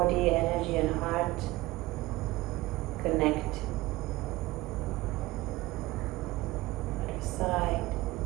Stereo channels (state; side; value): quieter; left; 19.0 dB